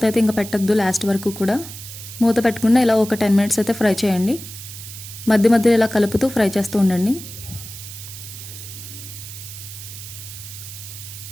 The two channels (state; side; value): noise; right; hiss, 12 dB below the sound